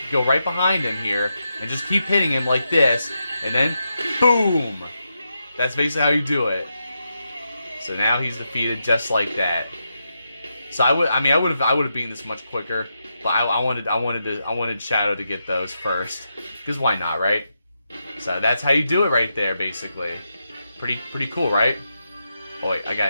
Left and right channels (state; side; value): inverted; both; correlation -0.85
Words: go right behind him here and just keep hitting him like this, and then boom. That's basically how you do it. So now he's defeated just like that. So I would have beaten this much quicker, but I wanted Shadow to get those first, because why not, right? So that's how you do it right there, basically. Pretty cool, right? Oh wait, I